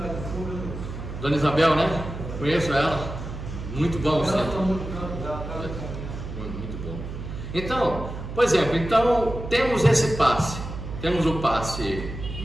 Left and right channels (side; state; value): right; noise; hum, 8 dB below the sound